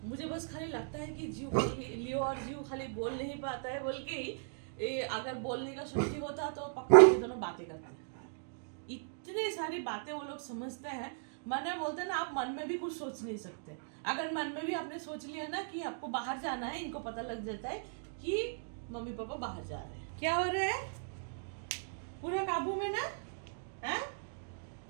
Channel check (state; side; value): silent; left; digital silence